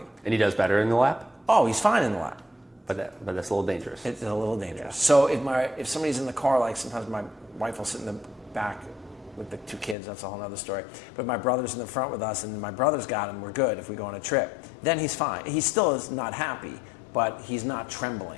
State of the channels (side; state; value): right; drops out; at 10.0 s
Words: And he does better in the lap? Oh, he's fine in the lap. But that's a little dangerous. It's a little dangerous. So if somebody's in the car, like sometimes my wife will sit in the back with the 2 kids. That's a whole other story. But my brother's in the front with us, and my brother's got him. We're good if we go on a trip. Then he's fine. He still is not happy, but he's not